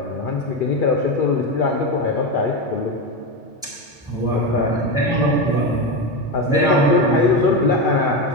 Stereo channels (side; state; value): both; normal; correlation 0.15